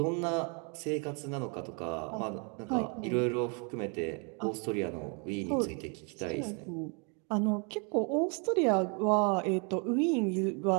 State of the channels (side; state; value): left; quieter; 36.6 dB